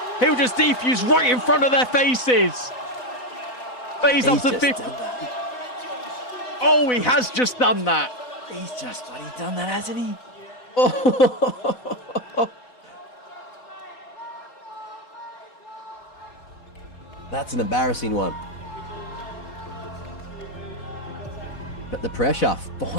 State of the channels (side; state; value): right; late; 4.0 ms